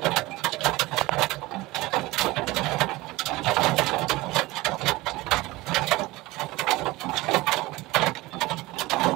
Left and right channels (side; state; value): left; quieter; 20.2 dB